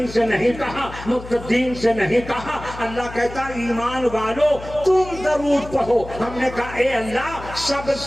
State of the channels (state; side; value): noise; left; hum, 14 dB below the sound